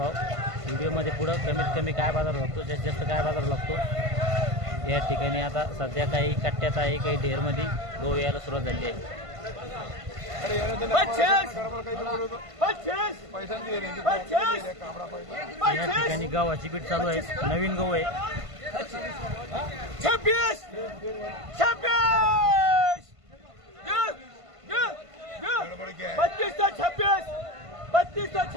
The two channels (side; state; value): left; late; 1.5 ms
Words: व्हिडिओमध्ये पुढं कमीत कमी काय बाजार लागतो, जास्तीत जास्त काय बाजार लागतो या ठिकाणी आता सध्या काही कट्ट्यात आहे, काही ढेरमध्ये गहू यायला सुरुवात झाली आहे। या ठिकाणी गव्हाची पीठ चालू आहे, नवीन गहू आहे। 26